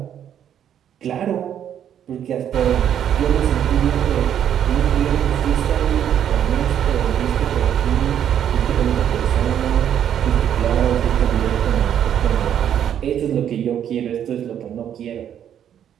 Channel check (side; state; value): left; quieter; 9.6 dB